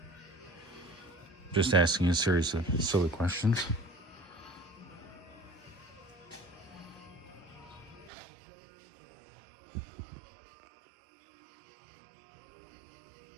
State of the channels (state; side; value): drops out; left; at 8.1 s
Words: Just asking a series of silly questions.